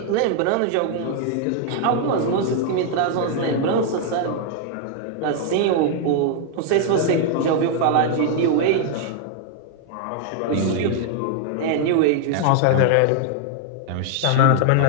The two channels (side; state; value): both; different; correlation 0.00